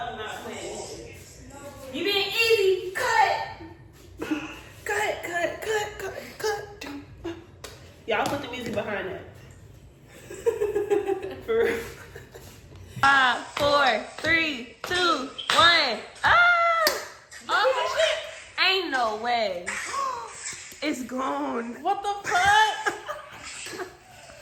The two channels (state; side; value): identical; both; correlation 1.00